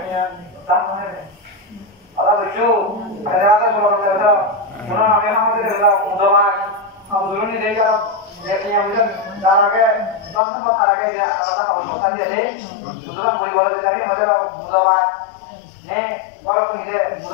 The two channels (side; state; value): right; drops out; at 10.4 s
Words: নিয়ে দাম মানে আলা বুঝছো আরে রাতে বলে দাও পুরো আমি আমাদের দাও উদমান আন্দোলন দিয়ে যাও দেখি আমরা তার আগে দশম তার আগে যে আলাদা কথা দিয়ে দেই সুতরাং বই বলতে যাই মজা বুধবার হ্যাঁ বড় করে